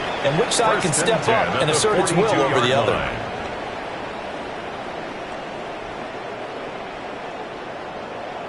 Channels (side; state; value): both; identical; correlation 1.00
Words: and which side can step up and assert its will over the other.